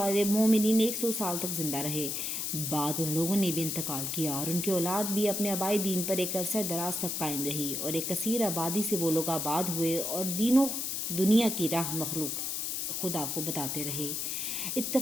مومنین 100 سال تک زندہ رہے۔ بعد ان لوگوں نے بھی انتقال کیا اور ان کی اولاد بھی اپنے آبائی دین پر ایک عرصہ دراز تک قائم رہی، اور ایک کثیر آبادی سے وہ لوگ آباد ہوئے اور دین و دنیا کی راہ مخلوق خدا کو بتاتے رہے۔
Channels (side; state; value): left; noise; hiss, 2 dB below the sound